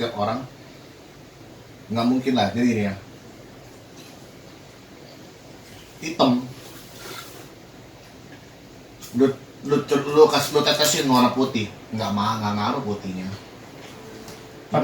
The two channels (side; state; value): both; identical; correlation 1.00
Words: orang nggak mungkin lah. Jadi ini ya, hitam lu tetesin warna putih, nggak ngaruh putihnya.